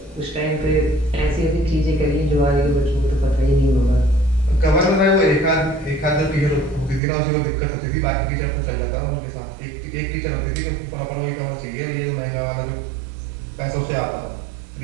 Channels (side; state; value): left; drops out; at 7.0 s